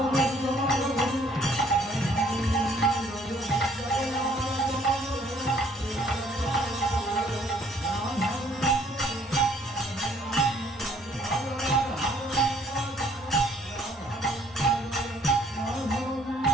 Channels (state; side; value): normal; both; correlation 0.61